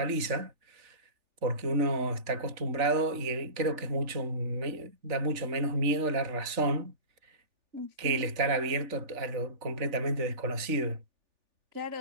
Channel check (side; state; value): left; late; 3.4 ms